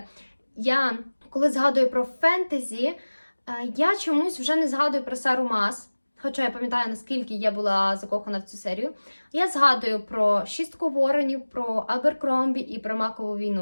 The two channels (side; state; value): both; inverted; correlation -1.00